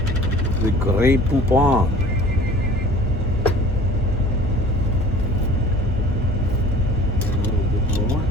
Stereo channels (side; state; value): both; normal; correlation 0.47